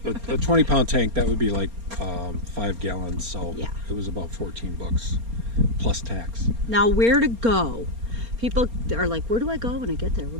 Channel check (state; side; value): late; left; 4.3 ms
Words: A 20-pound tank, that would be like 5 gallons. So yeah. It was about $14 plus tax. Now, where to go? People are like, where do I go when I get there?